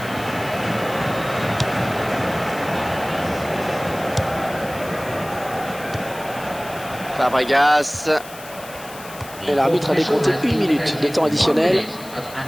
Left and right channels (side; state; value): left; noise; hiss, 17 dB below the sound